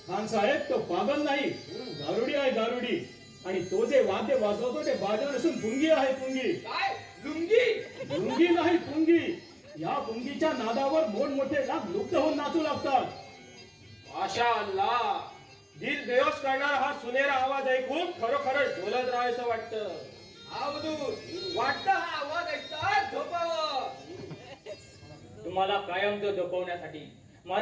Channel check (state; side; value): identical; both; correlation 1.00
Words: खान साहेब, तो पागल नाही, गारुडी आहे गारुडी. आणि तो जे वाद्य वाजवतो ते बाजा नसून पुंगी आहे पुंगी. काय लुंगी? पुंगी नाही पुंगी. या पुंगीच्या नादावर मोठमोठे लाख लुप्त होऊन नाचू लागतात. माशा अल्लाह, दिल बेहोश करणारा हा सुनेरा आवाज ऐकून खरोखरच डोलत राहायचं वाटतं. वाटतं हा आवाज ऐकतात झोपावं. तुम्हाला कायमचं झोपवण्यासाठी